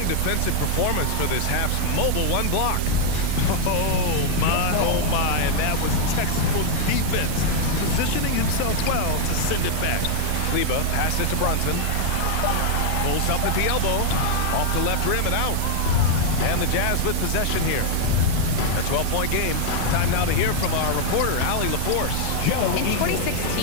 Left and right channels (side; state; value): both; different; correlation 0.00